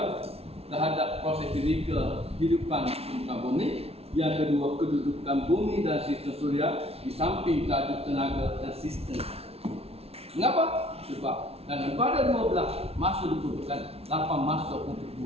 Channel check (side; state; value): left; late; 0.30 ms